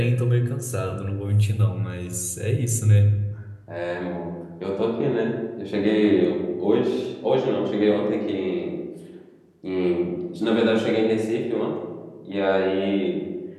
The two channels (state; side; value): identical; both; correlation 1.00